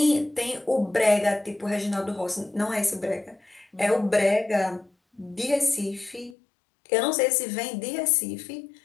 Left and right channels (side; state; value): right; drops out; at 6.4 s